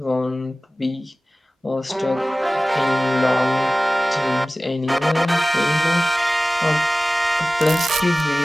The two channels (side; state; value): both; normal; correlation 0.97